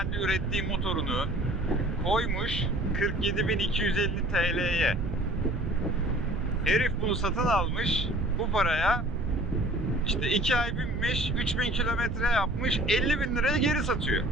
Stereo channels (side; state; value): right; noise; rumble, 5 dB below the sound